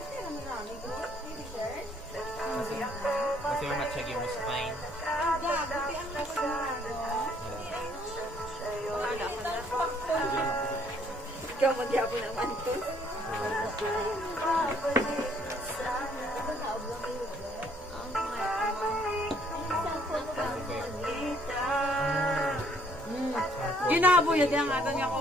Kasi yung matsyagi mo spine. Ikaw magyapo naman ito. Ginabo yun yung ato niya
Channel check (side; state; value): both; normal; correlation 0.64